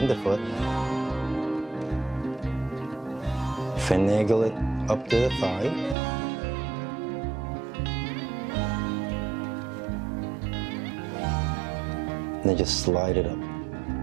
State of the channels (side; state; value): left; drops out; at 6.0 s